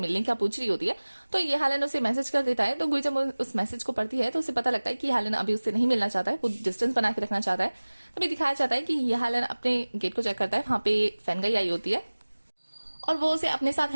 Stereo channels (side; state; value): both; inverted; correlation -1.00